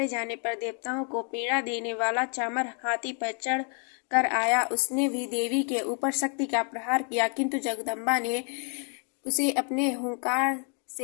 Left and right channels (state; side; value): quieter; right; 40.0 dB